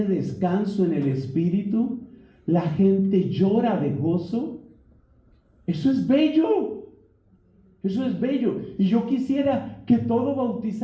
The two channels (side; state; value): both; identical; correlation 1.00